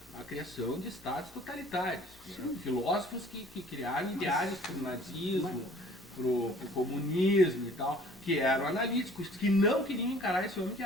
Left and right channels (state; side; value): normal; both; correlation 0.52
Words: a criação de estados totalitários. Né? Filósofos que criaram ideais para o nazismo, para o comunismo e tal, que eram analíticos, que não queriam encarar esse homem que